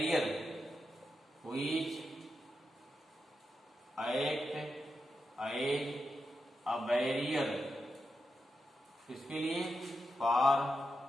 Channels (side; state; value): both; normal; correlation 0.87